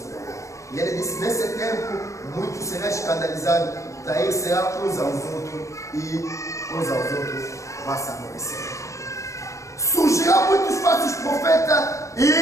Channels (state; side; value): late; right; 0.15 ms